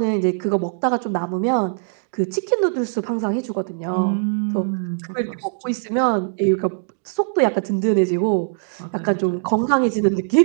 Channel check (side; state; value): left; silent; digital silence